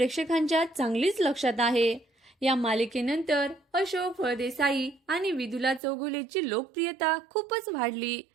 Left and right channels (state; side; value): drops out; left; at 5.8 s